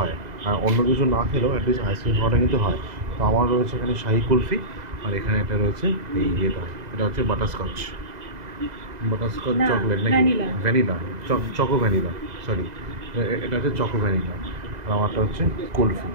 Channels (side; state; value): left; late; 2.0 ms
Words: আর অন্য কিছু না খেলেও অ্যাটলিস্ট আইসক্রিম খাওয়াটা কিন্তু হয়। তো আমার রয়েছে এখানে শাহি কুলফি, আর এখানে এটা রয়েছে এই এটা হচ্ছে বাটারস্কচ চকলেট নাকি ভ্যানিলা, চকো ভ্যানিলা, সরি এটা হচ্ছে চকো ভ্যানিলা, আর আমারটা হচ্ছে কুলফি।